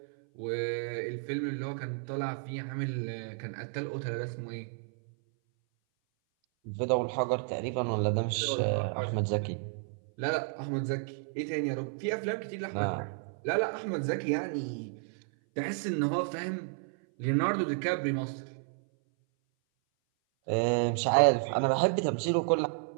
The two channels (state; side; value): silent; left; 57 dB below the other